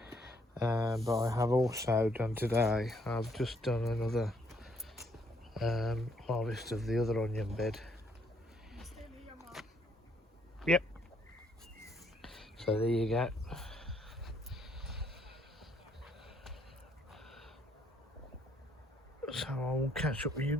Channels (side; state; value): both; normal; correlation 0.70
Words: But I have also done today, I've just done another harvest of the other onion bed. Yep. So there you go. So I will catch up with you